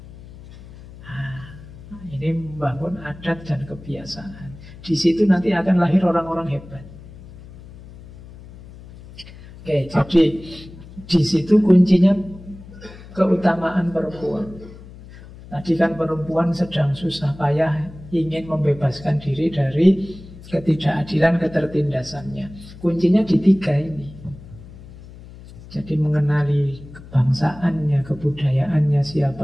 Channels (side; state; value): left; noise; hum, 18 dB below the sound